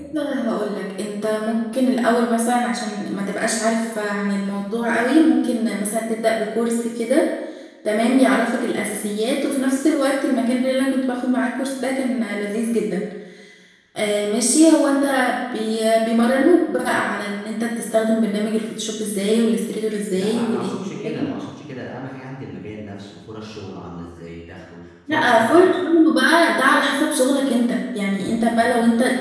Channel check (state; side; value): identical; both; correlation 1.00